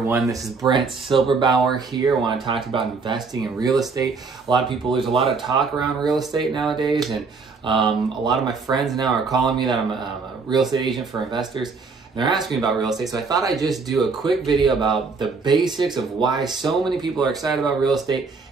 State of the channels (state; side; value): quieter; left; 4.6 dB